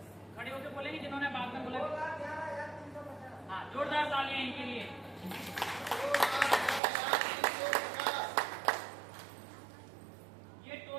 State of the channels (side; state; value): left; drops out; at 6.8 s